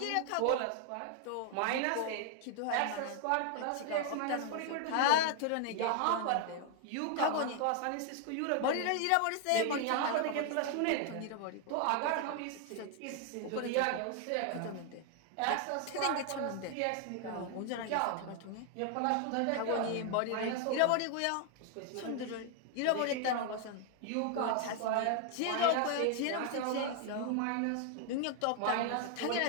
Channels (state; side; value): different; both; correlation 0.00